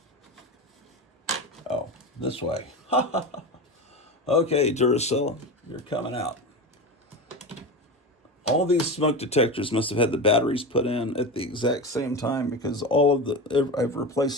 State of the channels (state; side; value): normal; both; correlation 0.24